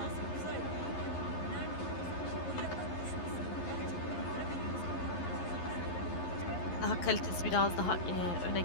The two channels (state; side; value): late; right; 11 ms